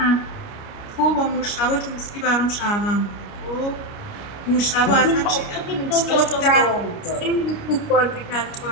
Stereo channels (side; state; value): right; late; 29 ms